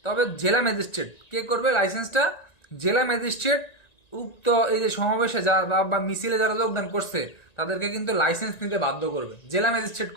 তবে জেলা ম্যাজিস্ট্রেট কে করবে? লাইসেন্সটা জেলা ম্যাজিস্ট্রেট উক্ত এই যে সমাবেশে বা মিছিলে যারা যোগদান করছে তাদেরকে কিন্তু লাইসেন্স নিতে বাধ্য করবে, জেলা ম্যাজিস্ট্রেট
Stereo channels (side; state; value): right; late; 1.9 ms